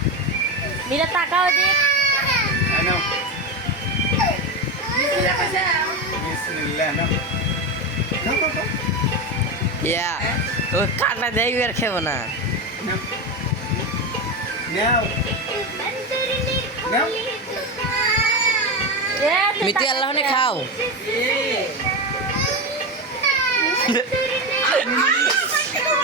मेरा ताकाओ देख আনো বিসমিল্লাহ নাও নাও নাও या वो काटना दे यार खेबो ना নাও নাও নাও मिती अल्लाह ने खाओ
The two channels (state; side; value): normal; both; correlation 0.16